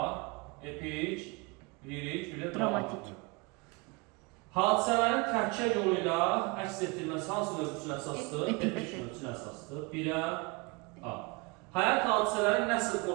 epik, lirik, bir də dramatik. Hadisələrin tərkiyə yolu ilə əks etdirilməsi hansı növ üçün əsasdır? Epik növ üçün əsasdır. Birə A. Həyat hadisələri nəsr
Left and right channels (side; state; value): left; quieter; 27.7 dB